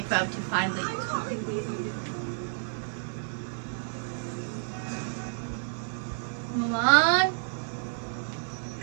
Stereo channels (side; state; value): left; silent; 58 dB below the other